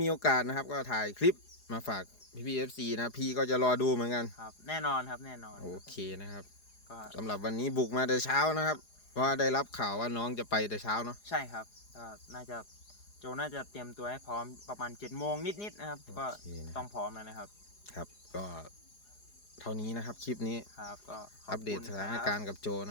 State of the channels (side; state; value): right; late; 4.8 ms